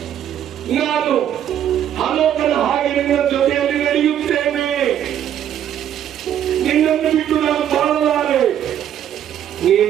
ನಾನು ಹನೋಕನ ಹಾಗೆ ನಿನ್ನ ಜೊತೆಯಲ್ಲಿ ನಡೆಯುತ್ತೇನೆ. ನಿನ್ನನ್ನು ಬಿಟ್ಟು ನಾನು ಬಾಳಲಾರೆ.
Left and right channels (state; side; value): quieter; left; 10.3 dB